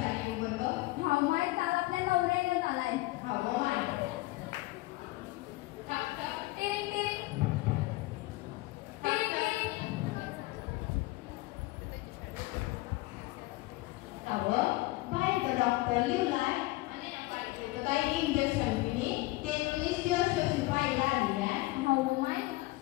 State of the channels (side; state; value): right; quieter; 20.3 dB